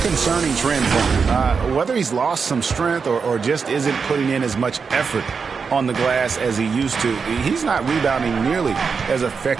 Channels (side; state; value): left; quieter; 5.5 dB